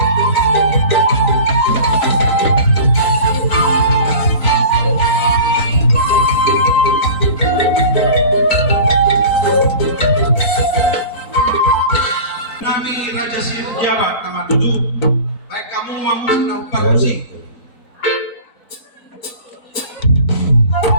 Nami Raja Siru Jawa nama tujuh. Baik kamu mamu senang parmusin.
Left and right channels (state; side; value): late; right; 4.5 ms